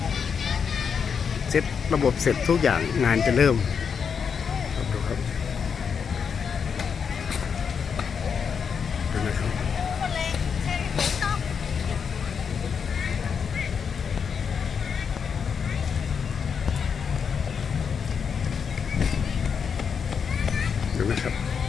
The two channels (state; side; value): quieter; right; 6.5 dB